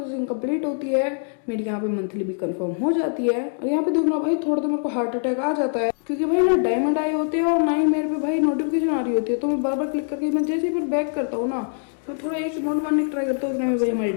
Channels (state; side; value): silent; right; digital silence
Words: कंप्लीट होती है मेरी यहाँ पे मंथली भी कंफर्म हो जाती है। और यहाँ पे देखना भाई थोड़ा तो मेरे को हार्ट अटैक आ जाता है, क्योंकि भाई ना डायमंड आए होते हैं और ना ही मेरे पे भाई नोटिफिकेशन आ रही होती है। तो मैं बार बार क्लिक करके मैं जैसे फिर बैक करता हूँ ना तो थोड़ा एक अमाउंट मारने की ट्राई करता हूँ, उसमें भाई हमारे